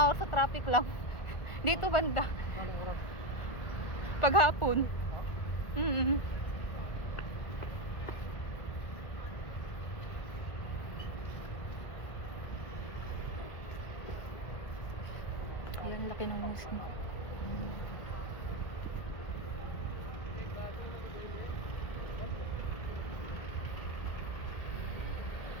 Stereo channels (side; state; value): right; late; 1.4 ms